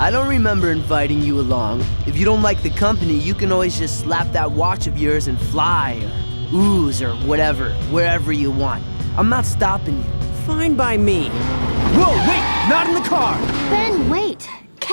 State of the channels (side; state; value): both; inverted; correlation -1.00